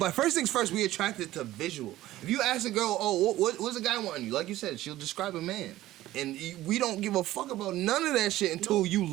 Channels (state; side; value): quieter; left; 15.4 dB